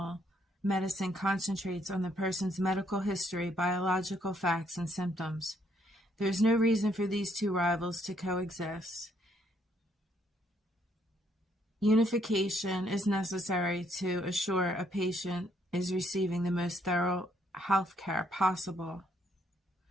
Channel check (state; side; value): normal; both; correlation 0.70